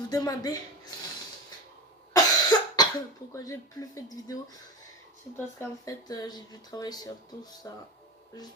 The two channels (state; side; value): normal; both; correlation 0.24